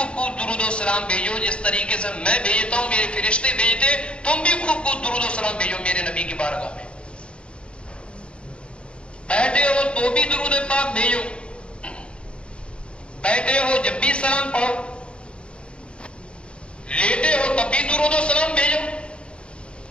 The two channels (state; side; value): late; right; 0.056 ms